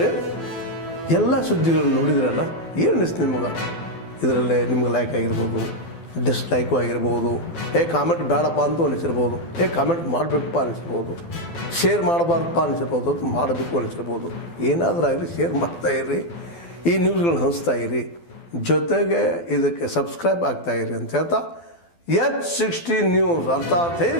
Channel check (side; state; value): right; late; 12 ms